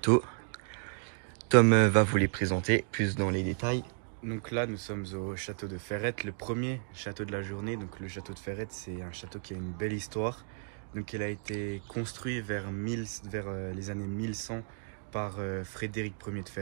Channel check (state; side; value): silent; left; digital silence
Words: Tom va vous les présenter plus dans les détails. Donc là, nous sommes au château de Ferrette, le premier château de la journée. Donc le château de Ferrette, c'est un château qui a une belle histoire. Donc il a été construit vers les années 1100 par Frédéric Ier de